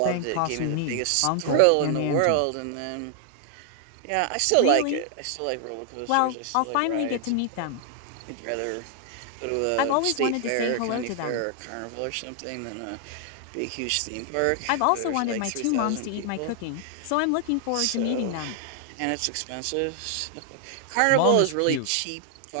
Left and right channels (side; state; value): both; different; correlation 0.00